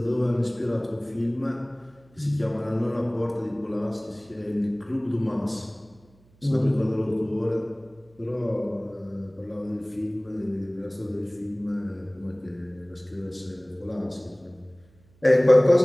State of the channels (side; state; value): right; noise; hum, 30 dB below the sound